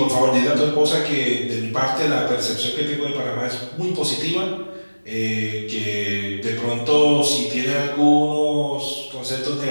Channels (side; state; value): both; inverted; correlation -1.00